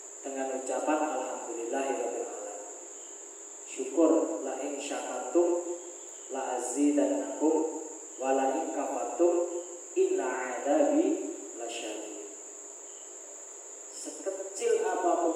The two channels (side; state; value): both; identical; correlation 1.00